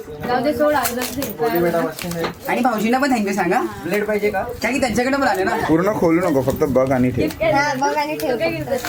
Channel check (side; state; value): both; identical; correlation 1.00